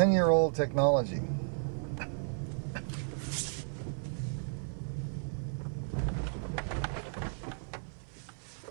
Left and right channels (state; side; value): silent; left; 55 dB below the other